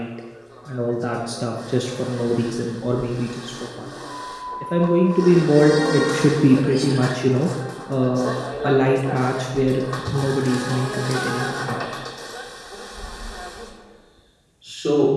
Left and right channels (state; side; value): identical; both; correlation 1.00